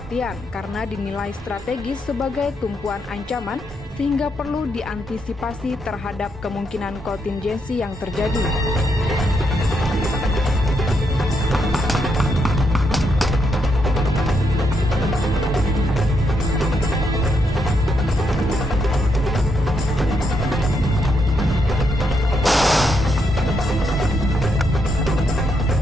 karena dinilai strategis sebagai tumpuan ancaman sehingga perlu diantisipasi terhadap kemungkinan kontingensi yang terjadi.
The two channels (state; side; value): normal; both; correlation 0.79